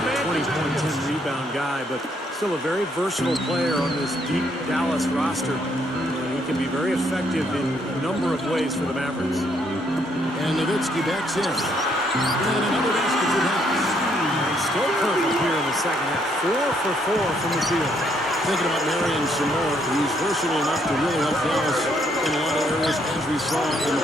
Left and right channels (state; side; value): normal; both; correlation 0.71